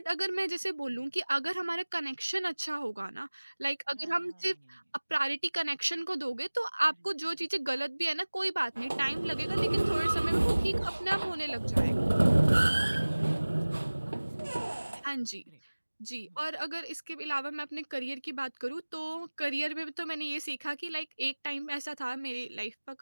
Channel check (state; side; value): inverted; both; correlation -1.00